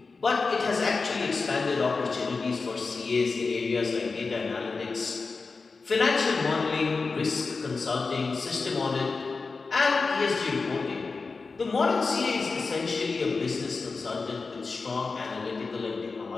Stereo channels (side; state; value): right; quieter; 4.3 dB